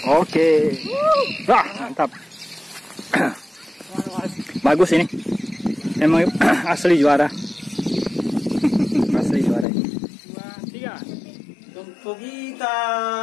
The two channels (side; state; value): right; drops out; at 9.7 s